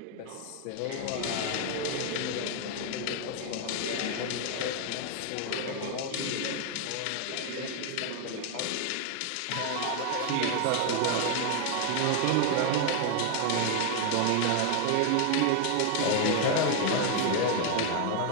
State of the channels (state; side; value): different; both; correlation 0.00